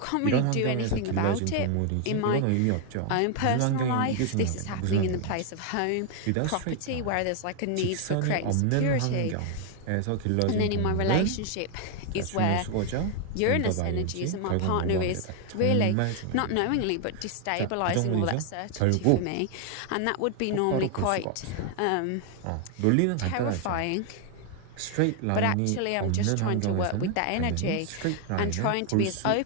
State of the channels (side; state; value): both; different; correlation 0.00